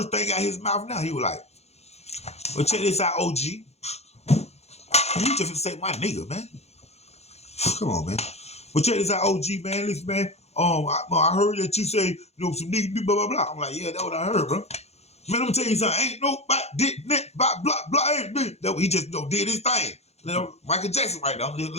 thing out his mouth now, he was like, well, check this out, OG. You just say my nigga, man. Come on, man. But check this out, OG, man. Listen, man. I heard that you say, some nigga do blah, blah, blah. I'm like, yeah, that's what I heard, bro. Man, let me tell you something. Ain't nobody did net, blah, blah, blah, ain't me. That he just did his thing. Michael Jackson right now. I'm just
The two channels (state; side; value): late; right; 0.31 ms